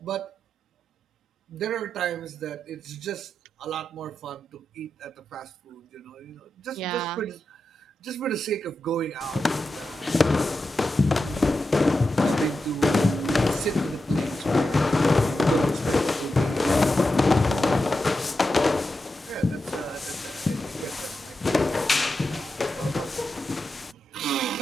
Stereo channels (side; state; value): both; normal; correlation 0.89